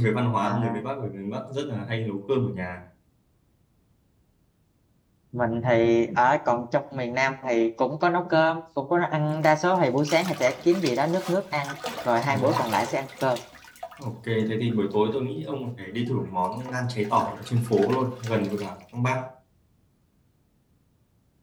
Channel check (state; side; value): identical; both; correlation 1.00